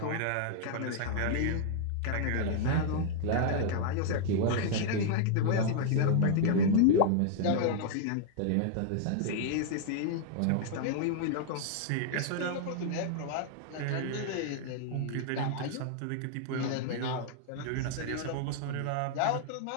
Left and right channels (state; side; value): different; both; correlation -0.01